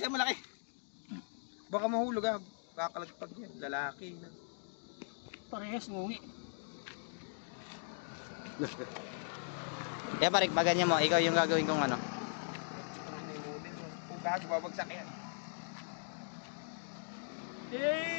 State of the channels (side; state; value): right; silent; digital silence